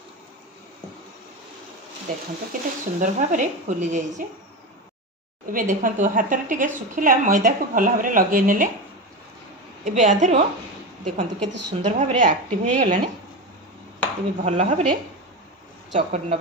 देखंतु केते सुंदर भाव में फुली जाइए। एबे देखंतु हाथ रे टिके सुखिला मैदा को भल भाव में लगे नेले एबे आधरो देखंतु केते सुंदर भाव में एक्टिव हो गलानी। एबे भल भाव में चकट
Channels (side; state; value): both; normal; correlation 0.20